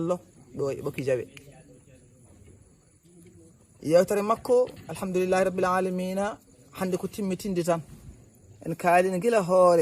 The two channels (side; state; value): both; identical; correlation 1.00